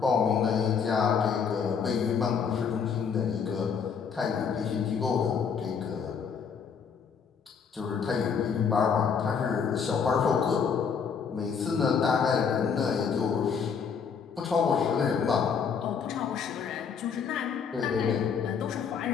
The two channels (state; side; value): quieter; right; 6.5 dB